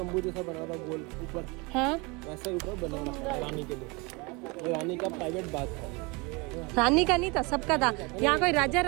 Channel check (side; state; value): left; quieter; 27.5 dB